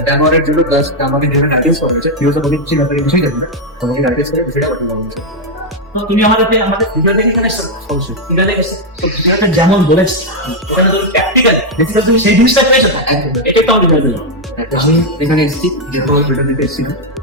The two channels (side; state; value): both; normal; correlation 0.01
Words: ড্যামোরের জন্য প্লাস আমাকে যেখানে অ্যাড্রেস করা হয়েছে ভিউজ অনেক কিছু ব্যাপারে কিছুই জানি না, তোমাকে অ্যাড্রেস করে বিষয়টা পাঠিয়ে দেওয়া হয়েছে। তো তুমি আমাদের ভিডিও দেখে এখানে এসেছো, অবশ্যই ভিডিও দেখে এসেছো। তো ভিডিওটা যেমন বলেছি ওখানে তুমি প্র্যাকটিক্যাল বেসিক্যালি তুমি সেই জিনিসটা পেয়েছো না, এটা একটা ভিডিও দিলাম। আমি এখানে এসেছি যেহেতু ভিডিও দিতে এসেছি না,